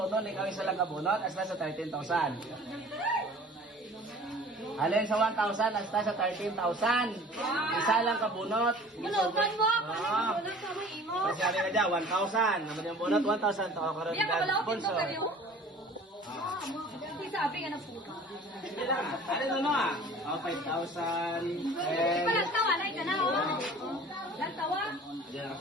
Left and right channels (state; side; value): normal; both; correlation 0.46